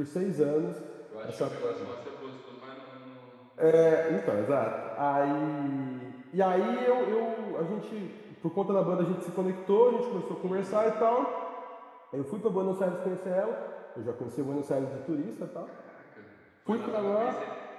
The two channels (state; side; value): identical; both; correlation 1.00